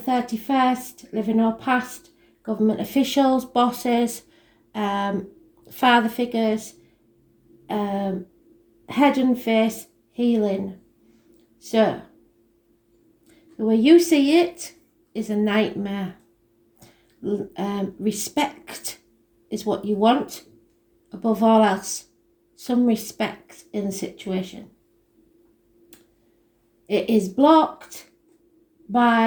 living or past, government officials, bosses, father figures, head and face, healing. So, the way you see it is a nightmare. Respect is what you want above all else. Some respect in the situation. It is blocked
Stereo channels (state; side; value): identical; both; correlation 1.00